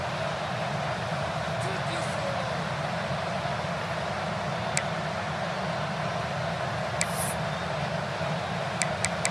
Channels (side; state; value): both; identical; correlation 1.00